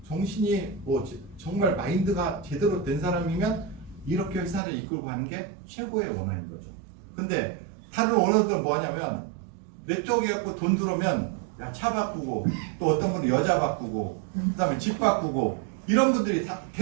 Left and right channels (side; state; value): left; drops out; at 4.6 s